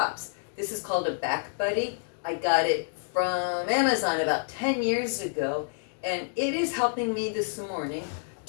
This is called a Back Buddy. I got it from Amazon about 10 years ago, and it is helping me this morning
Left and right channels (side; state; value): right; silent; digital silence